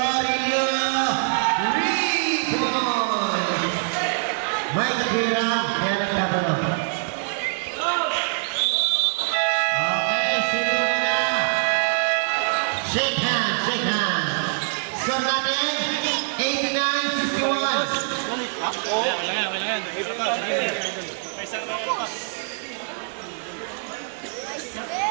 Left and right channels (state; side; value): silent; left; digital silence